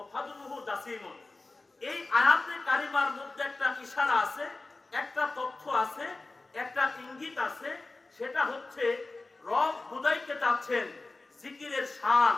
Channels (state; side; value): quieter; right; 3.3 dB